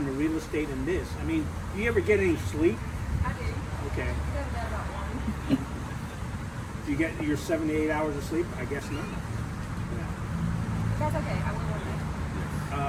the real estate and this? I mean, do you ever get any sleep? I do. Okay. Go to bed about 1. Do you get your 7 to 8 hours of sleep? I guess not. That's okay. I will one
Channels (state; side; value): identical; both; correlation 1.00